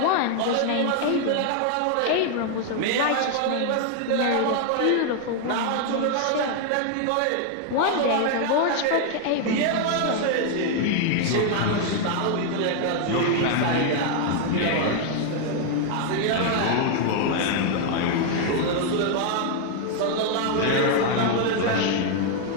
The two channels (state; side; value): different; both; correlation 0.00